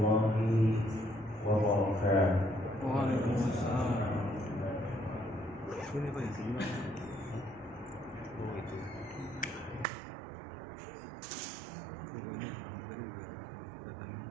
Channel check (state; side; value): drops out; left; at 9.9 s